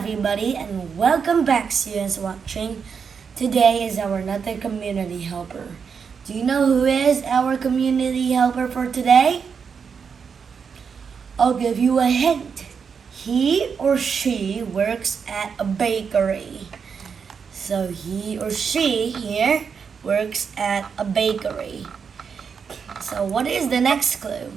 and welcome back students watching. Today is our another community helper. Do you know who is our community helper for today? I'll give you a hint. He or she works at a bakery. So he or she here works at a bakery. So what is the next clue?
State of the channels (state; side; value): quieter; left; 6.3 dB